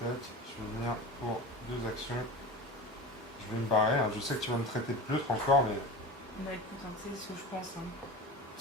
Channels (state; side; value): normal; both; correlation 0.31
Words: tac. Je vais venir pour 2 actions. Je vais me barrer. Hein. Je sais que tu vas me traiter de pleutre encore, mais Bah écoute, hein, tu sais ce que je pense. Hein.